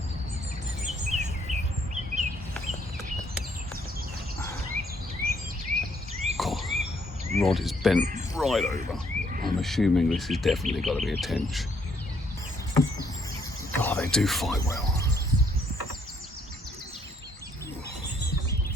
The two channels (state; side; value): normal; both; correlation 0.68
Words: God, rod is bent right over. I'm assuming this has definitely got to be a tench. Oh, they do fight well.